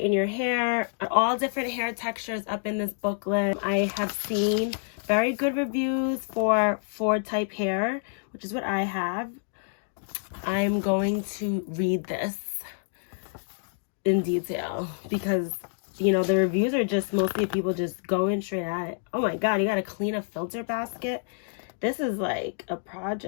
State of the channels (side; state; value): right; silent; digital silence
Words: your hair. All different hair textures up in this booklet. I have seen very good reviews for Ford type hair, which is what I have. I'm going to read this in detail because, you know, the reviews are just mostly people just going straight at it. Oh my God, you got to clean a filter basket. This is like a